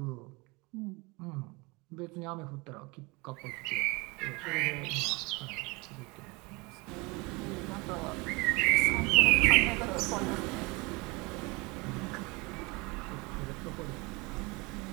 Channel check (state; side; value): quieter; left; 26.0 dB